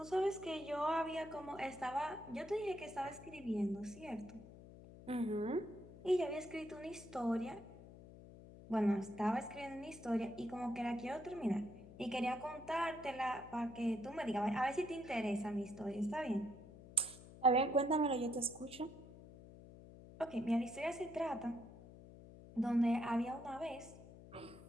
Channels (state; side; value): noise; left; hum, 17 dB below the sound